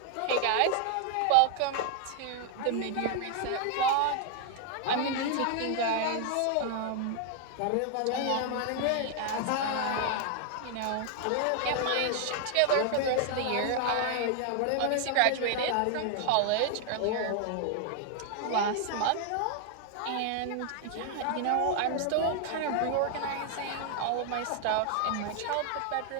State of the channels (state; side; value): different; both; correlation 0.00